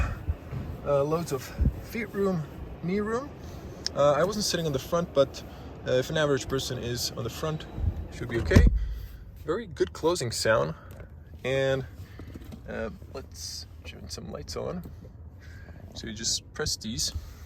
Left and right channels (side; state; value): both; identical; correlation 1.00